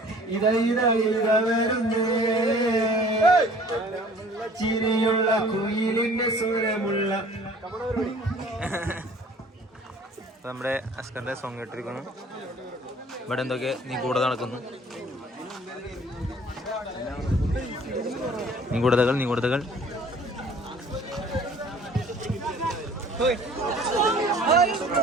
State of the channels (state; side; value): normal; both; correlation 0.51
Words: വരുന്നേ ചിരിയുള്ള കുയിലിന്റെ സ്വരമുള്ള. നമ്മുടെ അസ്കറിന്റെ സോങ് കേട്ടിരിക്കുന്നു. ഇവിടെ എന്തൊക്കെ നീ കൂടെ നടക്കുന്നു. നിഗൂഢതകൾ